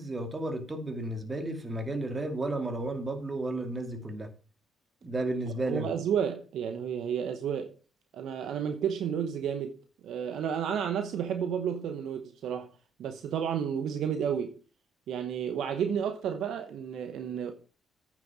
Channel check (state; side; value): quieter; left; 5.6 dB